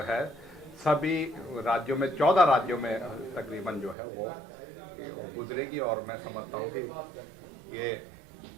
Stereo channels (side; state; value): left; drops out; at 4.0 s